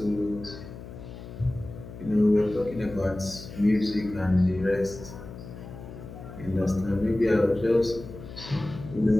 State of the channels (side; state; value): left; noise; hum, 13 dB below the sound